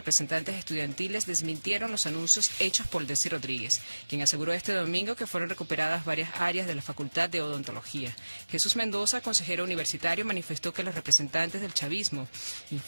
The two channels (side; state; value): both; inverted; correlation -1.00